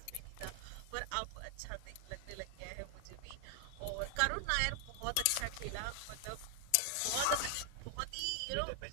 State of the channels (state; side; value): different; both; correlation 0.00